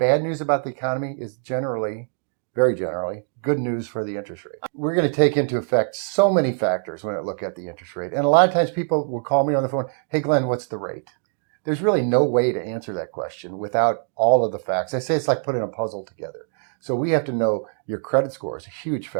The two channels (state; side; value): silent; left; 63 dB below the other